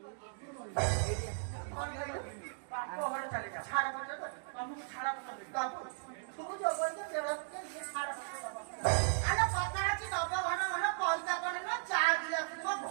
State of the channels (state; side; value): silent; left; digital silence